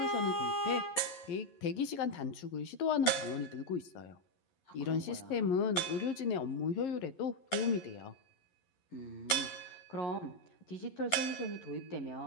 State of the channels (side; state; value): right; late; 11 ms